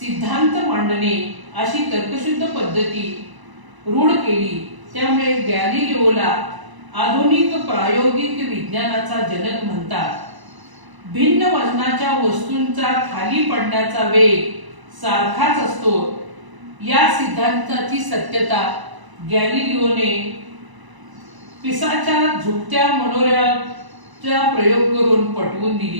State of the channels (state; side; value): late; left; 1.0 ms